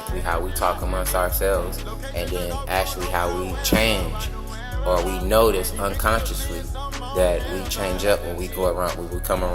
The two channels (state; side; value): identical; both; correlation 1.00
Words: how we talk amongst ourselves, and then actually how we change or we notice unconsciously that we change up when we go around, when we come